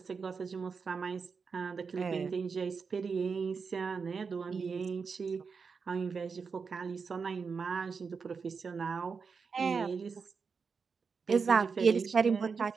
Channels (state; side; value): quieter; left; 5.3 dB